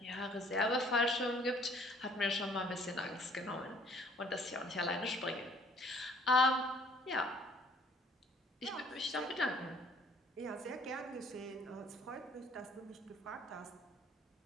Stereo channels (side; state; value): both; normal; correlation 0.58